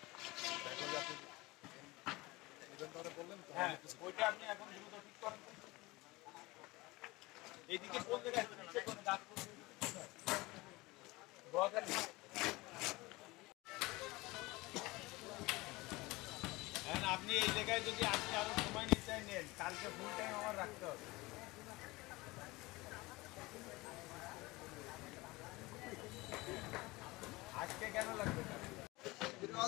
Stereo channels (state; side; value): quieter; right; 21.9 dB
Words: হ্যাঁ ওইটা আপনি এখন দ্রুত ঠিক করেন। এইদিকে কোন জায়গায় আপনি এই জায়গায় যদি আজকে আরো সময় নিতে নেন, কালকে ফুল টাইম আমার রাখতে হবে। আজকে কেন লাগবে